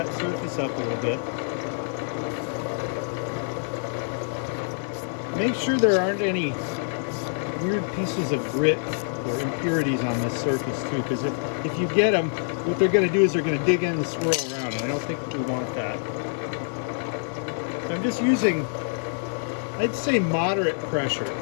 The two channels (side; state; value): right; silent; 61 dB below the other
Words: surface up a little bit. Make sure there aren't any weird pieces of grit or impurities on this surface too, because if you get them, what they're going to do is they're going to dig in and swirl around, and I don't think we want that. So I'm just using, I'd say, moderate pressure,